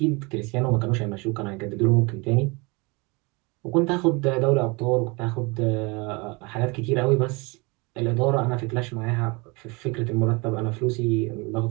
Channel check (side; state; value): left; quieter; 27.9 dB